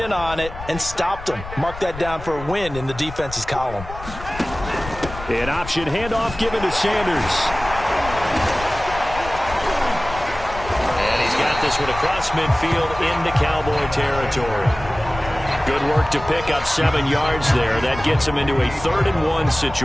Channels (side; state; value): left; noise; rumble, 12 dB below the sound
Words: on it, and stopped them. Mark that down for a win in the defense's column. An option handoff given to Sanders. And he's got this one across midfield into Cowboy territory. Good work to pick up 7 yards there. That gets him into a 3rd-and-1